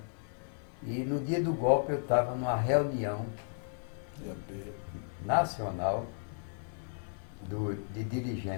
E no dia do golpe, eu estava numa reunião nacional de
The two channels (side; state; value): right; silent; 55 dB below the other